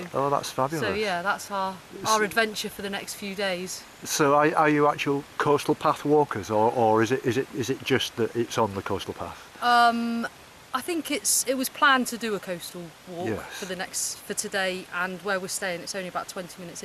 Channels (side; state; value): both; identical; correlation 1.00